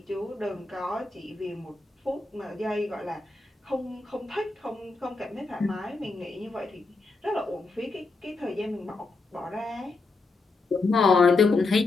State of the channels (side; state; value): right; quieter; 3.6 dB